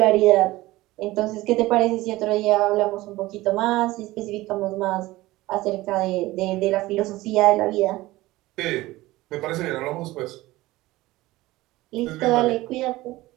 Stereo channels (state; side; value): quieter; left; 18.5 dB